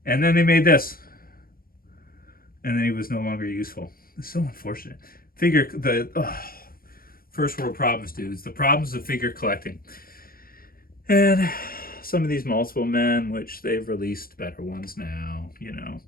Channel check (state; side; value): late; right; 0.42 ms